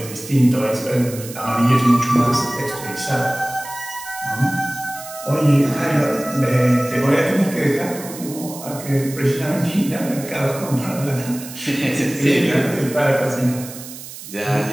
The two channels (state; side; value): noise; right; hiss, 13 dB below the sound